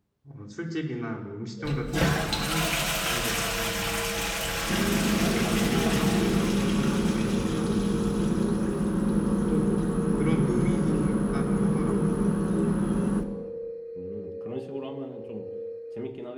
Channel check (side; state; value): both; identical; correlation 1.00